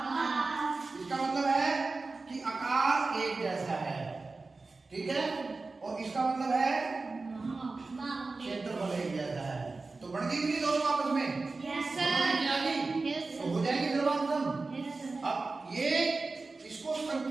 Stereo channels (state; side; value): quieter; left; 3.7 dB